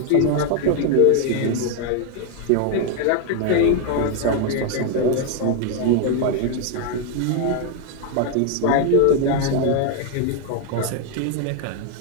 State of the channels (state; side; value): different; both; correlation 0.01